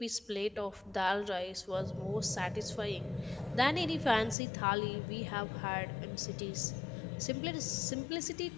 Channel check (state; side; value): drops out; right; at 4.4 s